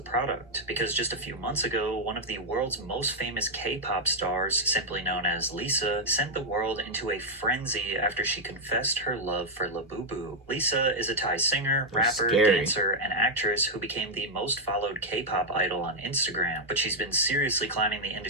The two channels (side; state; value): both; normal; correlation -0.02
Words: product. Because just a few months ago, one of the world's most famous K-pop stars, simply known as Lisa, sent the world into a frenzy after she confessed her love for Labubu. Lisa is a Thai singer, rapper, dancer, and actress who became the most followed K-pop idol on Instagram. But she's been seriously climbing the